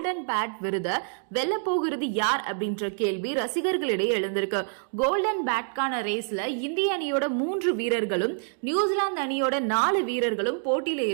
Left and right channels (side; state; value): left; silent; digital silence